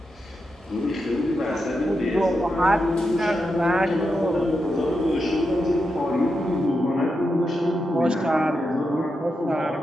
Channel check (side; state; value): both; normal; correlation 0.87